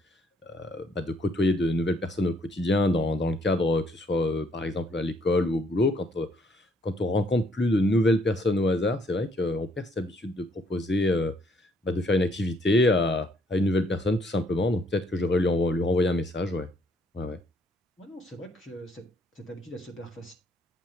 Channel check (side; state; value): both; normal; correlation 0.67